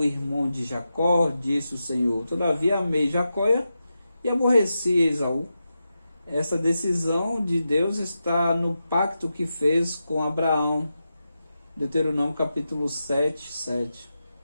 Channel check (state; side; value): inverted; both; correlation -0.89